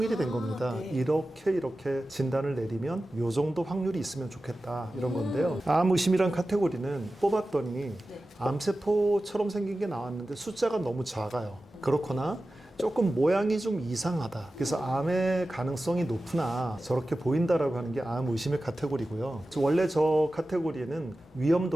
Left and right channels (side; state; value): both; normal; correlation 0.95